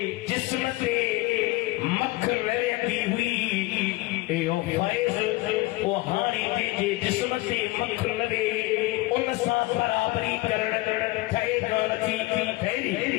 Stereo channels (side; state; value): right; quieter; 20.5 dB